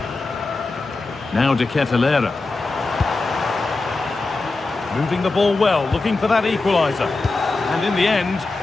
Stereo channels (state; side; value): quieter; right; 3.5 dB